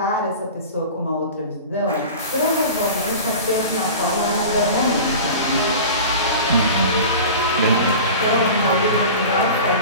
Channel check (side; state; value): both; inverted; correlation -0.35